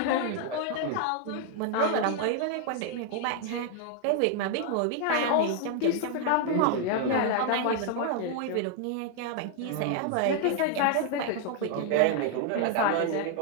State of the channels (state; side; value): different; both; correlation 0.00